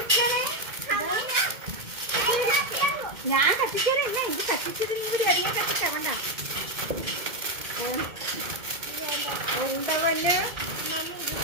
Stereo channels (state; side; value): late; left; 2.2 ms